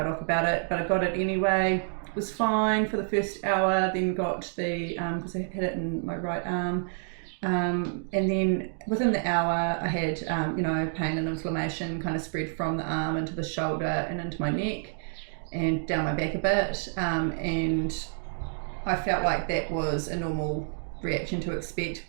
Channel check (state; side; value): silent; left; 59 dB below the other